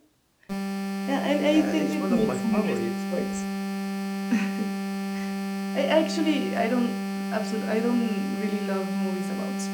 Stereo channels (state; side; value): identical; both; correlation 1.00